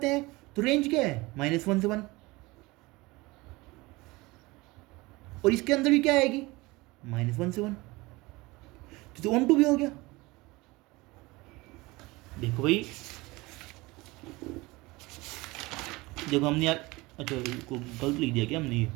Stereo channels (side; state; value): left; quieter; 22.2 dB